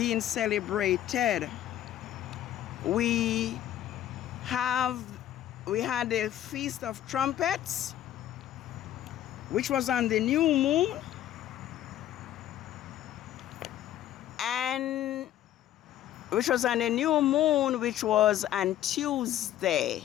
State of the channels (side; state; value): right; quieter; 12.1 dB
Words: celebrated. We had the Feast of Trumpets, which was on the new moon, which was on Tuesday,